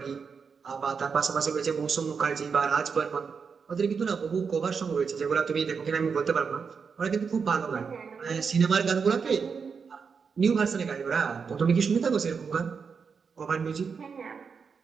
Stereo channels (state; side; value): quieter; left; 5.8 dB